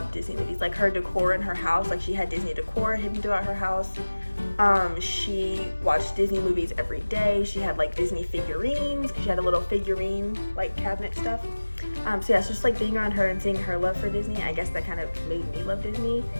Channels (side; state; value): both; inverted; correlation -1.00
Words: Disney movies. Like her decor in her house, like she had Disney decor hidden throughout her house. She watched Disney movies every day. She had like Disney figurines. She had a little figurine like cabinet stuff. So yeah, it's just like being around her and seeing her love for Disney, I guess that kind of made me love Disney.